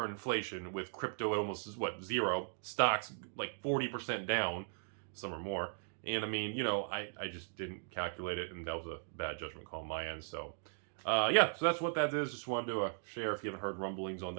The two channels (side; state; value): left; silent; digital silence